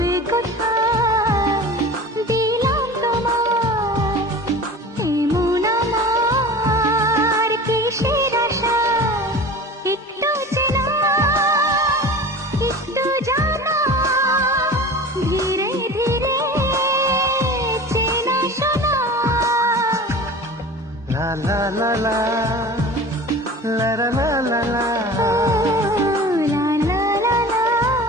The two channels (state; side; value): normal; both; correlation 0.37